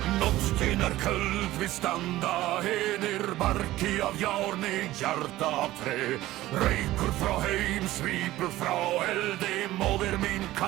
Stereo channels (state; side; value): quieter; left; 16.1 dB